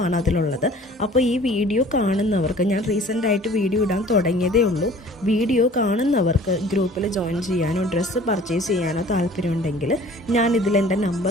ആണ് അതിലുള്ളത്. അപ്പോൾ ഈ വീഡിയോ കാണുന്നവർക്ക്, ഞാൻ റീസെൻ്റായിട്ട് വീഡിയോ ഇടാൻ തുടങ്ങിയതേ ഉള്ളൂ, വീഡിയോ കാണുന്നവർക്ക് ഗ്രൂപ്പിൽ ജോയിൻ ചെയ്യാനോ ഡ്രസ്സ് പർച്ചേസ് ചെയ്യാനോ താല്പര്യമുണ്ടെങ്കിൽ ഞാൻ ഇതിലെൻ്റെ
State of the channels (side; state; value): both; normal; correlation 0.49